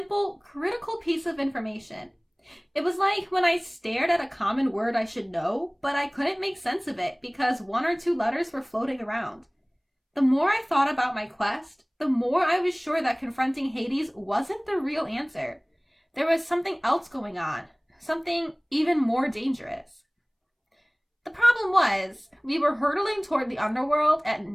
critical piece of information. It was like when I stared at a common word I should know, but I couldn't make sense of it because 1 or 2 letters were floating around. The more I thought about my quest, the more I was sure that confronting Hades wasn't the real answer. There was something else going on, something even more dangerous. The problem was, we were hurtling toward the underworld at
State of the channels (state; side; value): identical; both; correlation 1.00